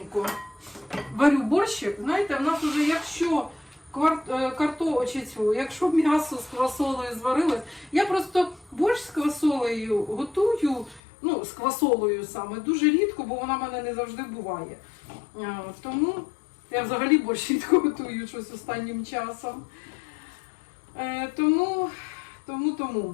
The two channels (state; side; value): drops out; right; at 11.0 s